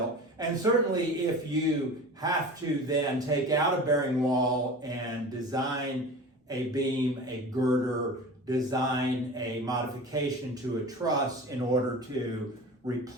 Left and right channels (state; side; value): normal; both; correlation 0.35